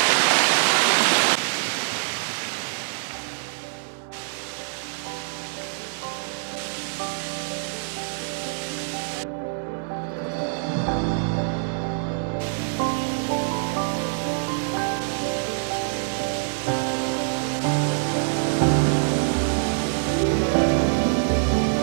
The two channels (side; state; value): left; silent; 62 dB below the other